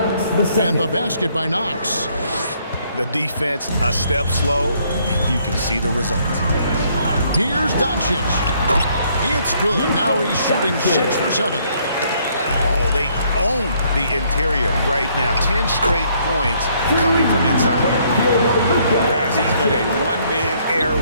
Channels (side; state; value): both; inverted; correlation -0.67